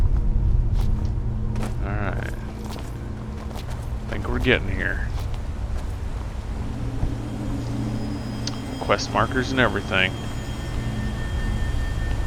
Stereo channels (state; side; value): identical; both; correlation 1.00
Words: Alright. Think we're getting here. Quest markers and everything.